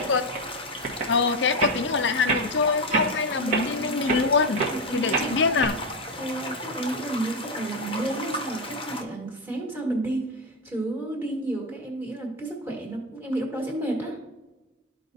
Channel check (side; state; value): both; normal; correlation 0.11